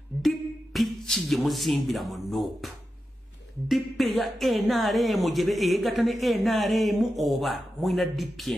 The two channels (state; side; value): normal; both; correlation 0.90